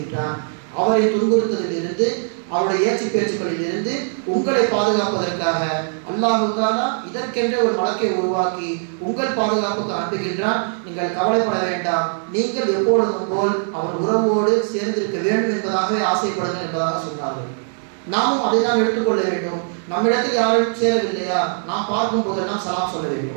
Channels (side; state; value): left; silent; digital silence